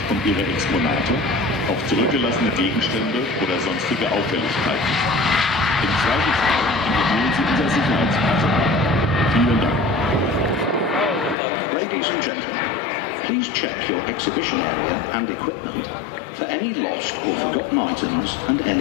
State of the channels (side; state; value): right; drops out; at 11.4 s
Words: und Ihre Exponate auf zurückgelassene Gegenstände oder sonstige Auffälligkeiten. Im Zweifelsfall informieren Sie unser Sicherheitspersonal. Vielen Dank. Ladies and gentlemen, please check your exhibition area and equipment for any lost or forgotten items and